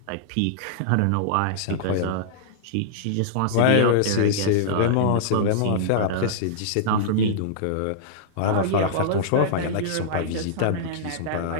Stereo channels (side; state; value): both; different; correlation -0.02